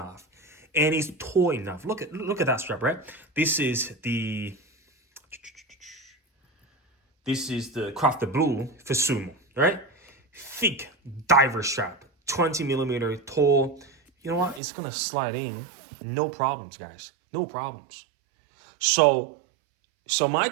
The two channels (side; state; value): left; drops out; at 14.6 s